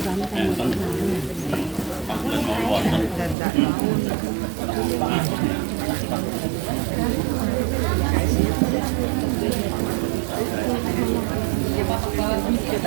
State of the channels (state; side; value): drops out; left; at 3.4 s